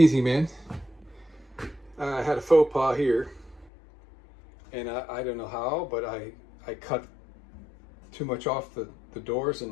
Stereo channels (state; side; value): drops out; right; at 3.7 s